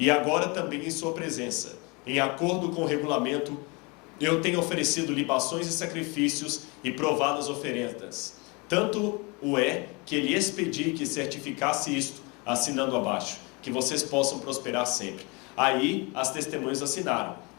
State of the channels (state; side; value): quieter; right; 28.7 dB